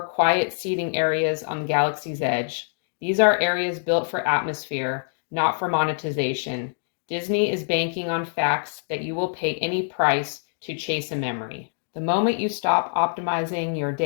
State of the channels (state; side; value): silent; right; digital silence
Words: quiet seating areas on the galaxy's edge. These are areas built for atmosphere, not for monetization. Disney is banking on facts that you will pay any price to chase a memory. The moment you stop optimizing your